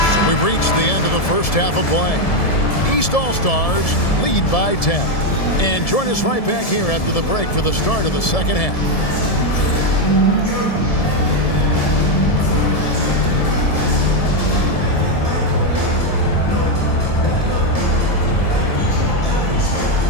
So we've reached the end of the first half of play. East All-Stars lead by 10. And join us right back here after the break for the start of the second half.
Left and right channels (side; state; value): right; late; 1.7 ms